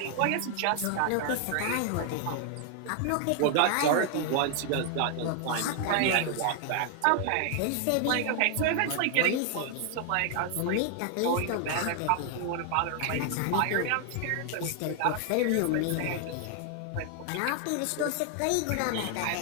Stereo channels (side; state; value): both; different; correlation 0.00